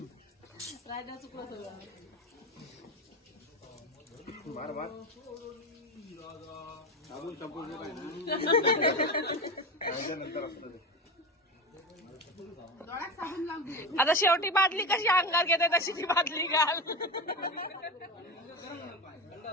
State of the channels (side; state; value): both; normal; correlation 0.23